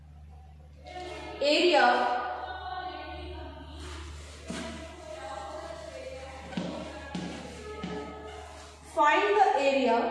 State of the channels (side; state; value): both; identical; correlation 1.00